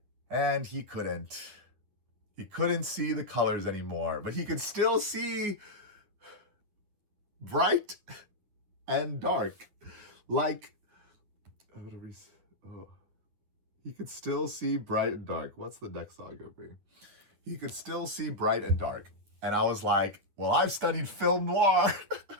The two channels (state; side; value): late; left; 9.8 ms